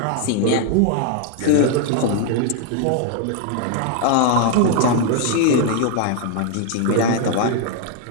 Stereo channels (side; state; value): both; different; correlation 0.01